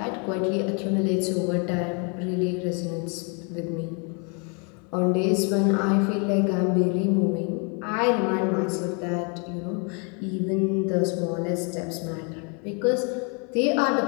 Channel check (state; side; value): quieter; right; 35.8 dB